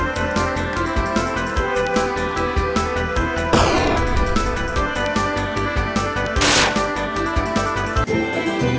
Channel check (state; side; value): identical; both; correlation 1.00